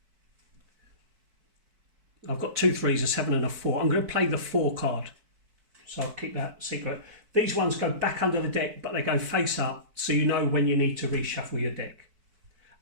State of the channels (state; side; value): late; left; 4.6 ms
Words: I've got 2 3s, a 7 and a 4. I'm going to play the 4 card. So I'll keep that secret. These ones go back under the deck, but they go face up, so you know when you need to reshuffle your deck.